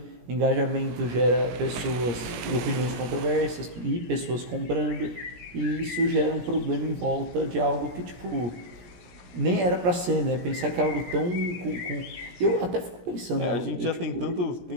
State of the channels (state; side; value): late; left; 17 ms